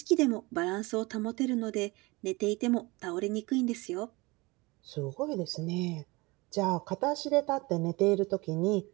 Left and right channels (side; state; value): left; quieter; 24.1 dB